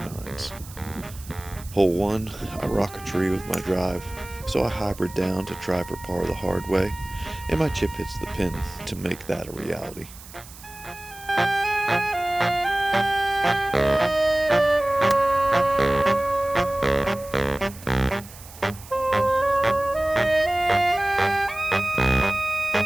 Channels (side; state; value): right; noise; hiss, 18 dB below the sound